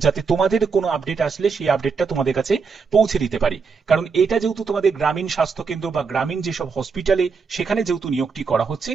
যাতে তোমাদের কোনো আপডেট আসলে সেই আপডেটটা তোমাদের কাছে পৌঁছে দিতে পারি। কারণ এটা যেহেতু তোমাদের গ্রামীণ স্বাস্থ্যকেন্দ্র বা গ্রামীণ যেসব হসপিটালে সেখানে যেহেতু নিয়োগটি করা হচ্ছে,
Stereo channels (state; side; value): quieter; left; 5.2 dB